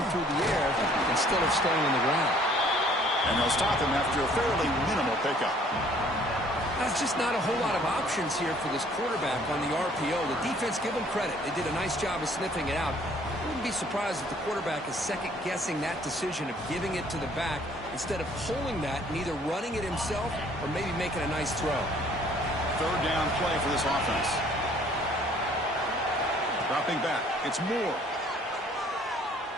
through the air instead of staying on the ground. And they'll stop him after a fairly minimal pickup. That's just not a whole lot of options here for this quarterback on the RPO. The defense, give them credit. They did a nice job of sniffing it out. I wouldn't be surprised if the quarterback is second-guessing that decision of giving it to the back instead of pulling that and either running it himself or maybe making a nice throw. 3rd down play for this offense. Dropping back. It's Moore.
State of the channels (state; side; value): normal; both; correlation 0.58